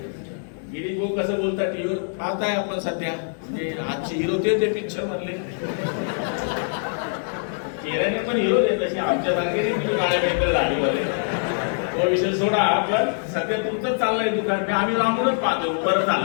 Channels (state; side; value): silent; right; digital silence